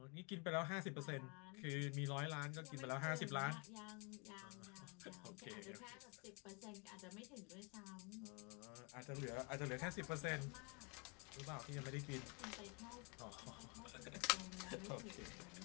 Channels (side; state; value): right; quieter; 33.0 dB